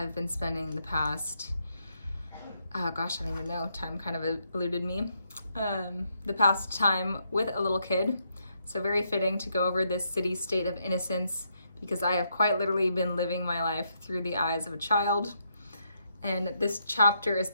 been spending the past, I don't even know, time kind of eluded me, the past time with a little kid. So very fitting to go over this Siddhi state of innocence, because I have quite literally been living my life through the eyes of a child. And this chapter is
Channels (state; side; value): inverted; both; correlation -0.78